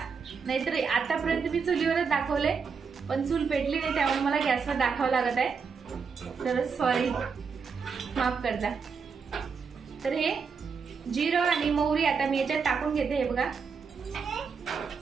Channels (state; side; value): quieter; left; 5.6 dB